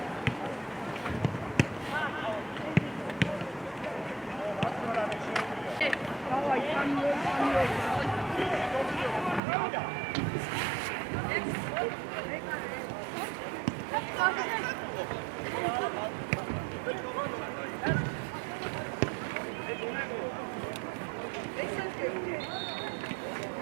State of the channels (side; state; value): left; drops out; at 9.4 s